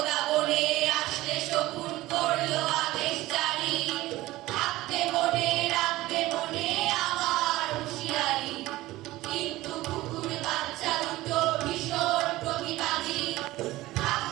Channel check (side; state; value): left; quieter; 17.6 dB